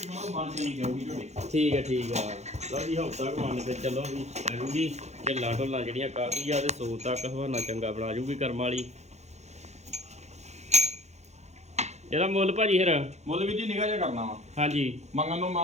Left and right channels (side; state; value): left; late; 0.33 ms